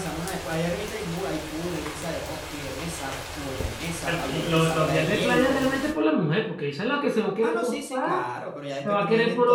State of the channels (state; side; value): identical; both; correlation 1.00